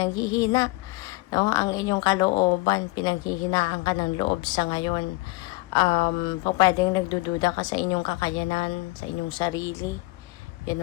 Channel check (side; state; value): right; quieter; 22.1 dB